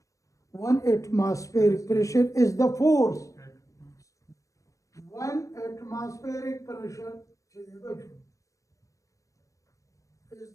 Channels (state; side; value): late; right; 0.16 ms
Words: 1 atmospheric pressure is the force. 1 atmospheric pressure is